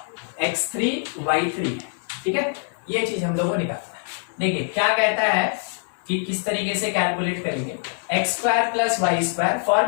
x3 y3 है। ठीक है, ये चीज हम लोगों को निकालना है। देखिए क्या कहता है कि किस तरीके से कैलकुलेट करेंगे, x square plus y square,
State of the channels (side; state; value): right; silent; digital silence